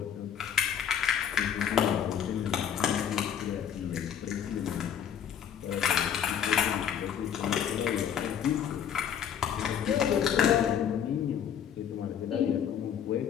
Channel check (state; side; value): quieter; right; 8.7 dB